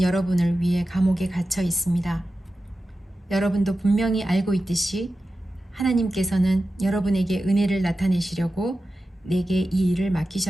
여러분을 위해 감옥에 갇혀 있습니다. 여러분도 분명히 알고 있듯이 하나님께서는 여러분에게 은혜를 나타내시려고 내게 이 일을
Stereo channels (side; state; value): both; normal; correlation 0.93